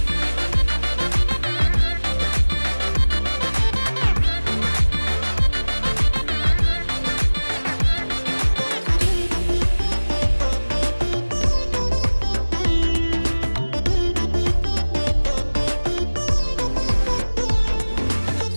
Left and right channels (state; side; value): inverted; both; correlation -1.00